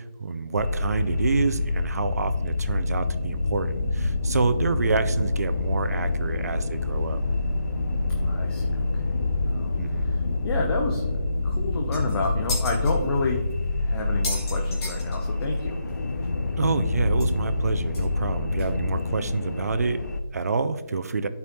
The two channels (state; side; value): inverted; both; correlation -0.79